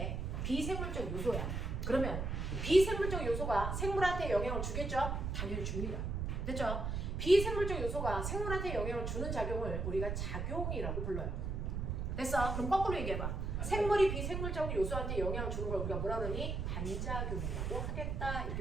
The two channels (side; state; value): right; noise; rumble, 2 dB below the sound